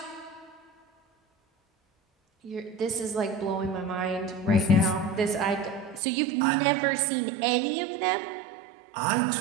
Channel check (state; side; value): drops out; left; at 6.0 s